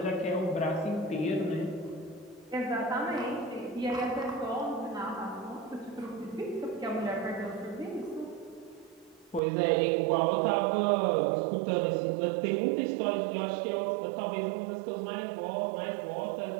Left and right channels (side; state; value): left; drops out; at 9.4 s